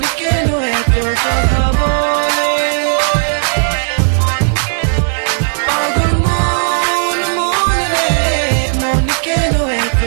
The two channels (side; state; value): left; silent; digital silence